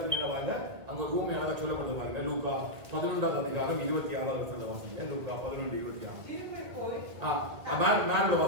என்ன வாங்க அங்க ஒரு ஊமை அழகா சொல்லப்படுது பாருங்க. லூக்கா 11வது அதிகாரம் 26வது வசனத்தை வாசிங்க. லூக்கா 11:26. திரும்பி போய் மேல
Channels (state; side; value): late; left; 1.9 ms